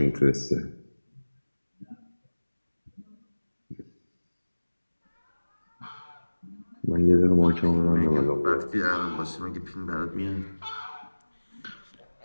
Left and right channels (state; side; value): inverted; both; correlation -1.00